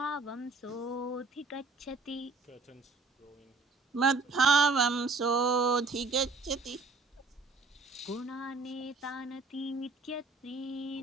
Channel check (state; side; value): quieter; left; 3.8 dB